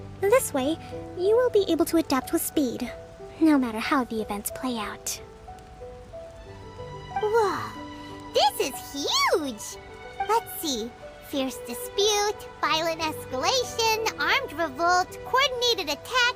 This way, you will be able to adapt with speed, no matter how the events play out. Whoa, this is huge! Let's see. Fierce dispute, violent escalation, armed revolt, coordinated attack,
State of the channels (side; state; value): both; identical; correlation 1.00